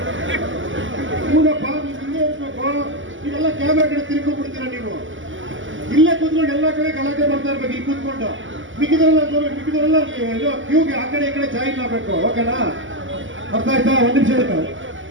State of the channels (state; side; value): late; left; 0.56 ms